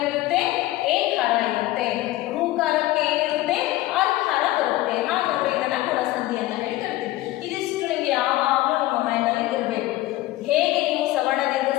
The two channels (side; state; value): right; quieter; 16.8 dB